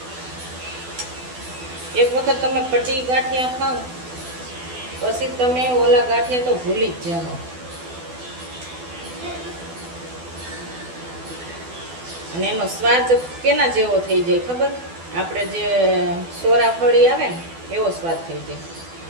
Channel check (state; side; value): late; left; 12 ms